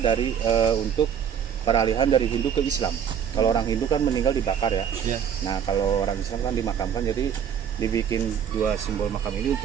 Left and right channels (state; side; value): quieter; left; 8.3 dB